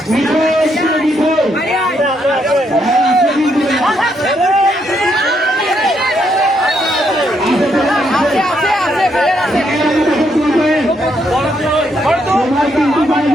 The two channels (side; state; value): both; normal; correlation 0.75